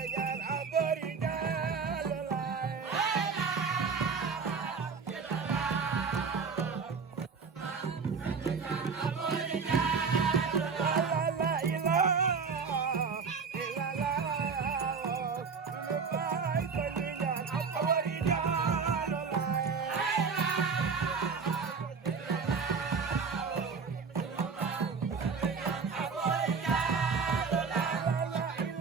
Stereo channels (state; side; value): quieter; left; 5.4 dB